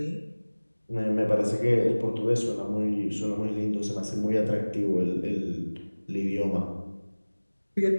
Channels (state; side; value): inverted; both; correlation -1.00